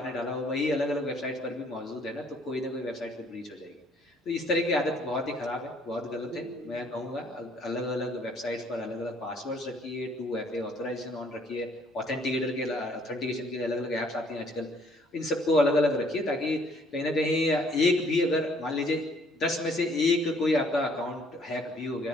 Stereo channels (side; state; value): both; normal; correlation 0.62